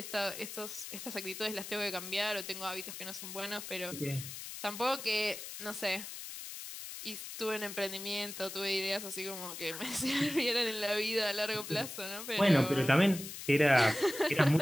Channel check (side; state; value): left; noise; hiss, 9 dB below the sound